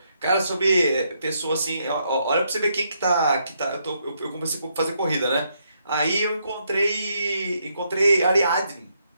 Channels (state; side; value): inverted; both; correlation -0.76